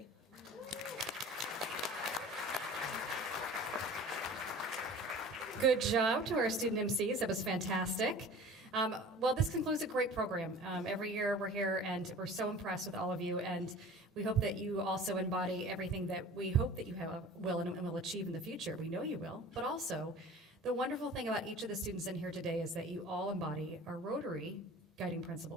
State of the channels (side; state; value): both; normal; correlation 0.42